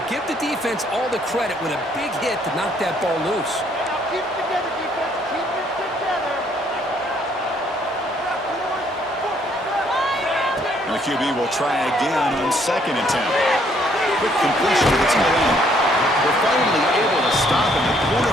give the defense all the credit with a big hit to knock that ball loose. Keep it together, defense. Keep it together. And the QB will try again on second and 10. Quick completion to the tight end. We're finally able to stop him. The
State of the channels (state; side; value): normal; both; correlation 0.66